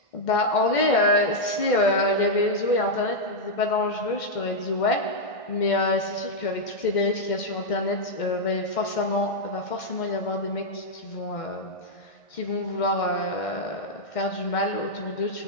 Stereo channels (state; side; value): late; right; 1.6 ms